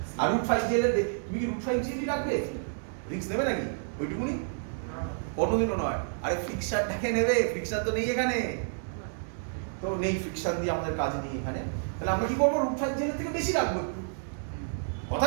আর √5gl এর তুমি কি √5gl রাখবে? রিস্ক নেবে নাকি ওইটুকুনি? কোনোদিনও নয়। আরে ফিক্সারটাকে নেবে, ফিক্সার তো নেই এখানে, তো নেই ফিক্সার দিয়ে আমাদের কাজ নেই এখানে। তাহলে আমরা কি করবো? √5gl এর থেকে বেশি রাখবো।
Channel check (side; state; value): left; silent; digital silence